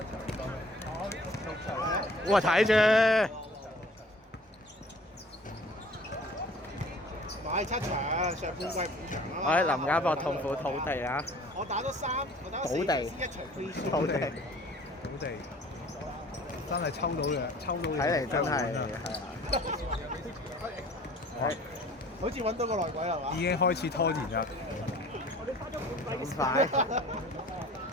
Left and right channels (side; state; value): both; normal; correlation 0.49